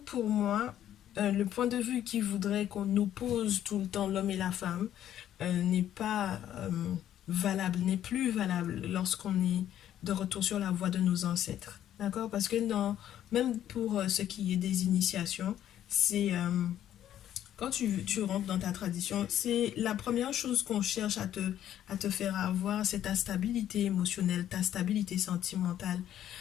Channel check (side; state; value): right; quieter; 11.3 dB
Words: pour moi, le point de vue qui voudrait qu'on oppose tout le temps l'homme et la femme n'est pas valable, n'est plus valable lorsqu'on est de retour sur la voie de nos ancêtres. D'accord? Parce que même pour ce qui est des initiations, c'est quand tu rentres dans ta tradition, c'est la première chose qu'on cherche à te faire avoir, c'est ta stabilité émotionnelle, ta stabilité sentimentale.